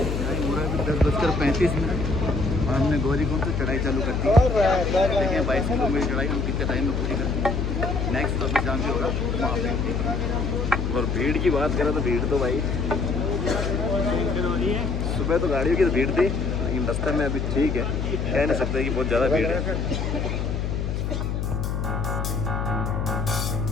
10:35 और हमने गौरीकुंड से चढ़ाई चालू कर दी। देखिए 22 किलोमीटर चढ़ाई हम कितने टाइम में पूरी कर दी। नेक्स्ट तो अभी जहाँ भी होगा वहाँ पे। और भीड़ की बात करें तो भीड़ तो भाई सुबह तो गाड़ियों की तो भीड़ थी, लेकिन रास्ते में अभी ठीक है, कह नहीं सकते कि बहुत ज़्यादा भीड़ है।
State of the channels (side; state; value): left; noise; hum, 1 dB below the sound